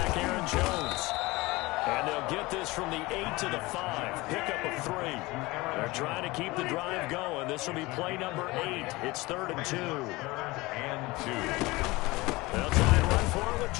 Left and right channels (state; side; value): quieter; right; 21.7 dB